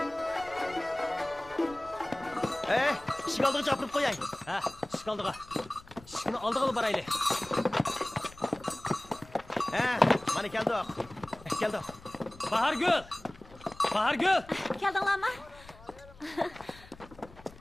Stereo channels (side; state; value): left; noise; rumble, 21 dB below the sound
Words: Işık aldığı çapırıp koyay. Ha, şıkaldığa. Şıkını aldığı baraylı. Mana keldi. Keldi. Bahargül! Bahargül! Keldinglarmi?